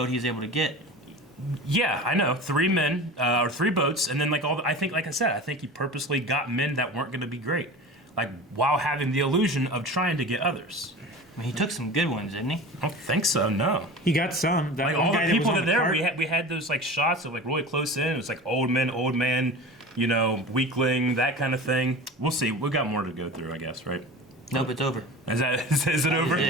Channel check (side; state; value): both; normal; correlation 0.34